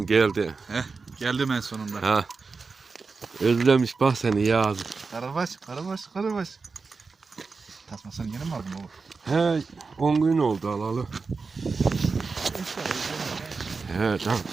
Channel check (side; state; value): left; quieter; 4.5 dB